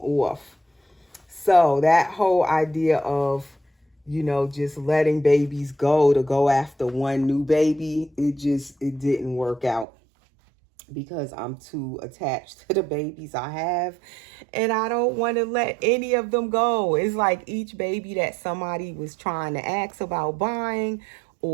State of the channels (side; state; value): left; drops out; at 9.9 s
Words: off. So that whole idea of, just letting babies go to go after one new baby, it didn't work out, because I'm too attached to the babies I have, and I don't want to let any of them go. It's like each baby that somebody was trying to ask about buying,